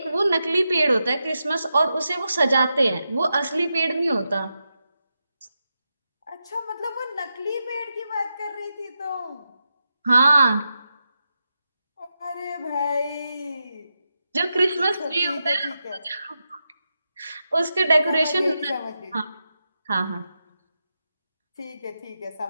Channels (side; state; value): both; inverted; correlation -0.88